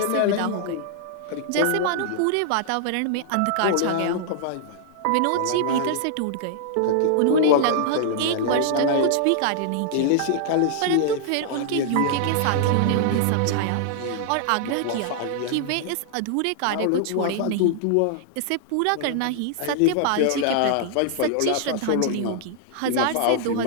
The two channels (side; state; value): both; different; correlation -0.01